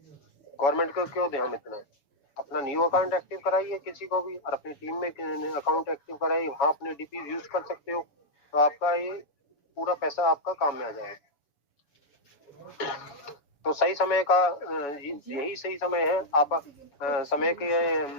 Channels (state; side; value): late; right; 7.0 ms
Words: गवर्नमेंट को क्यों दें हम इतना? अपना न्यू अकाउंट एक्टिव कराइए किसी को भी, और अपनी टीम में अकाउंट एक्टिव कराइए, वहाँ अपने डीपी यूज कर सकते हो, तो आपका ये पूरा पैसा आपका काम में आ जाएगा। तो सही समय का यही सही समय है, आप समय के